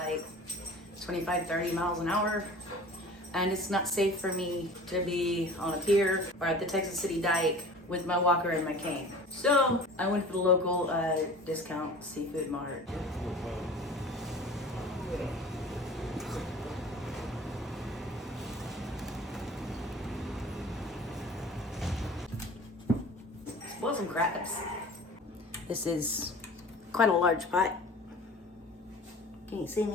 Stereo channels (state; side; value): normal; both; correlation 0.41